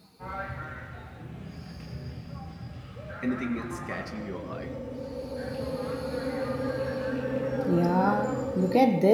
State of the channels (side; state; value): both; identical; correlation 1.00